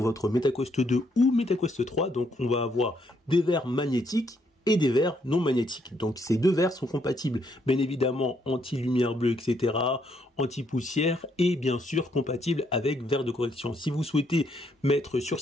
votre MetaQuest 2 ou MetaQuest 3. Donc on va avoir des verres magnétiques et des verres non magnétiques. Donc ces deux verres sont compatibles, bien évidemment anti-lumière bleue, etc., anti-poussière et bien sûr compatibles avec verres de correction. Si vous souhaitez mettre sur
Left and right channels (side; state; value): both; normal; correlation 0.73